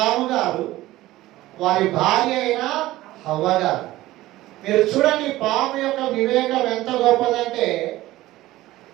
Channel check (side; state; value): left; quieter; 16.7 dB